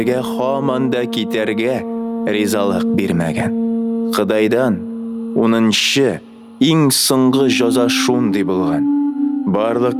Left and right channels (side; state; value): both; identical; correlation 1.00